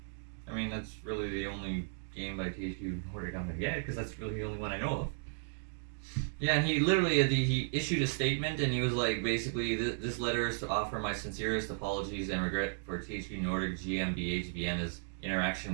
I mean, that's really the only game by THQ Nordic I'm gonna get because that's really the only one I know of. Yeah, and he literally he issued a statement and he was like, basically, this letter is to offer my sincerest apologies and regret for THQ Nordic GmbH Vienna's interaction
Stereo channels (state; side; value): silent; left; digital silence